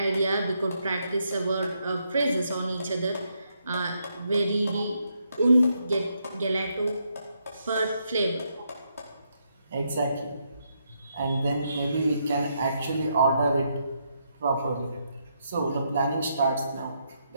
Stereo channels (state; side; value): inverted; both; correlation -0.78